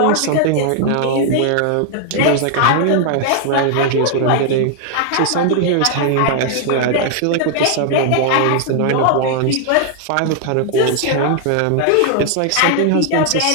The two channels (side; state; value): both; different; correlation 0.00